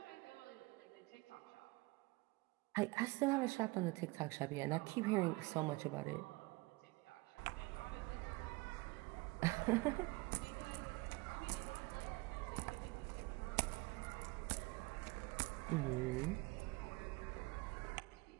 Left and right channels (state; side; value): quieter; left; 23.7 dB